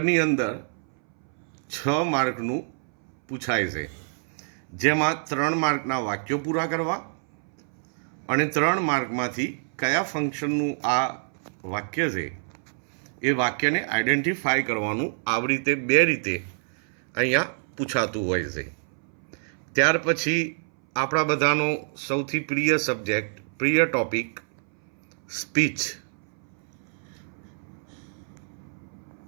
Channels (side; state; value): left; silent; 61 dB below the other